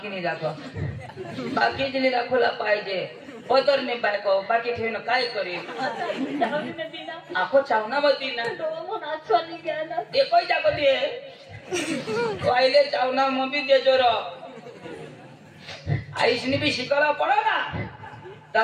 नाही दाखव बाकी दिली दाखवला पाहिजे पदर नाही बायको बाकी ठेवणं काय करेल आखो चावना बती ना नाचवानी घ्या ना एकही जागती आहे पहिले चावना मग बी देजो र आईसनी भी शिकायला पडो ना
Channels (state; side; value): identical; both; correlation 1.00